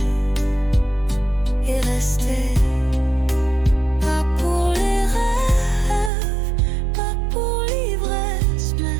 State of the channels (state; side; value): drops out; left; at 6.1 s